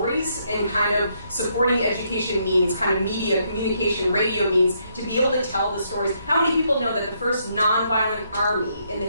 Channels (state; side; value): inverted; both; correlation -0.74